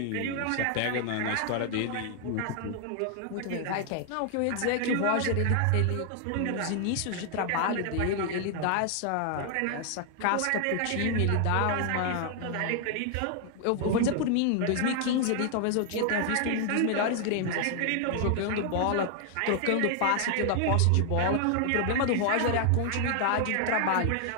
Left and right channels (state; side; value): different; both; correlation 0.00